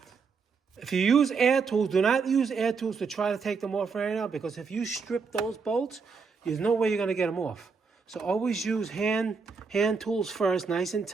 if you use air tools, do not use air tools to try to take them off right now, because if you strip those bolts, there's no way you're going to get them off. So always use hand tools first, nice and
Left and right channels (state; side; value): quieter; left; 5.1 dB